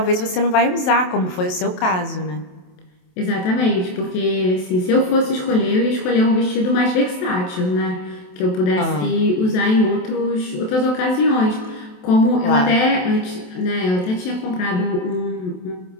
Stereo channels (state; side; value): late; right; 27 ms